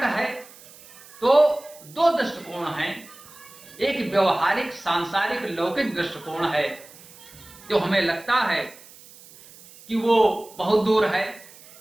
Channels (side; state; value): right; noise; hiss, 21 dB below the sound